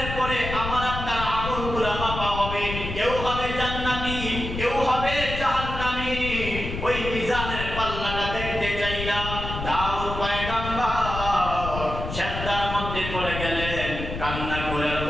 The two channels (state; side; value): noise; left; rumble, 6 dB below the sound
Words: পরে আমার আপনার আমলগুলো